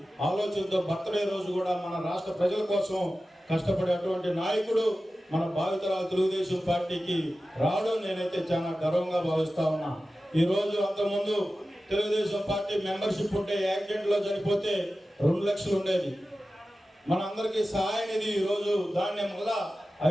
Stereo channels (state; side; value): normal; both; correlation 0.94